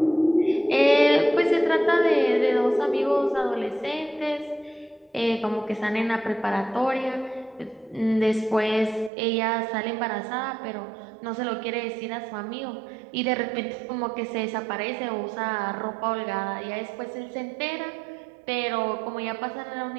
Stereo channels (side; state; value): left; drops out; at 9.1 s